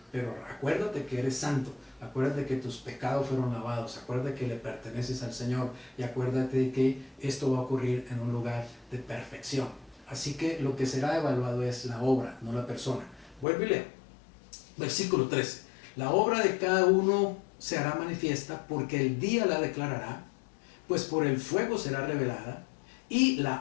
Pero acuérdate que eres santo, acuérdate que tus pecados fueron lavados, acuérdate que le perteneces al Señor y acuérdate que esto va a ocurrir en un lugar de perfección. Así que lo que será evaluado es la obra, no la persona. Vuelvo y leo. Versículo 13. La obra de cada uno se hará manifiesta porque el día la declarará, pues por el fuego será revelada, y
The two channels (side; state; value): right; drops out; at 13.5 s